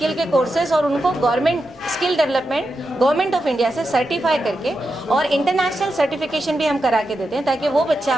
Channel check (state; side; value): normal; both; correlation 0.88